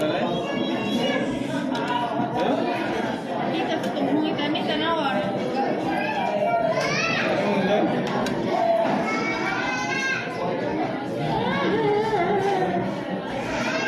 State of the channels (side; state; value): both; identical; correlation 1.00